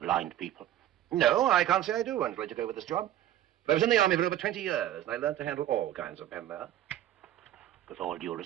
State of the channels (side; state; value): left; quieter; 12.4 dB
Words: blind people? No, I can't say I do until I took over this job. But I was in the army for over 20 years, and I learned to handle all kinds of men there. With all due